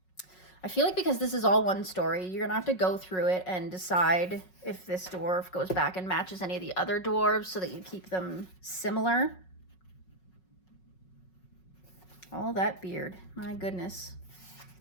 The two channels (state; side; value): late; right; 5.4 ms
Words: I feel like because this is all one story, you're gonna have to go through it and decide if this dwarf goes back and matches any of the other dwarves so that you keep them similar. All that beard, my goodness.